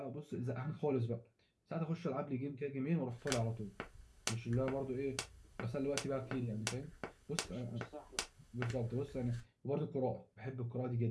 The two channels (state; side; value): identical; both; correlation 1.00